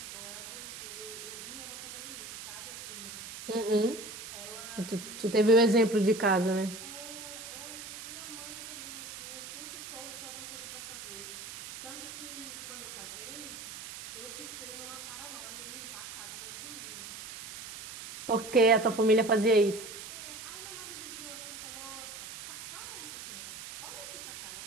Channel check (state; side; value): noise; right; hiss, 10 dB below the sound